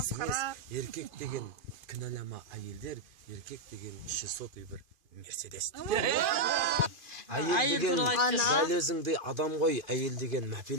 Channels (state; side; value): late; left; 2.5 ms